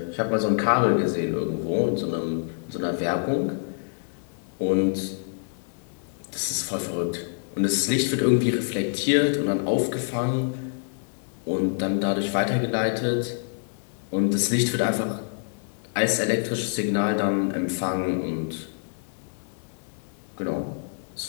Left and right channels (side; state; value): right; silent; digital silence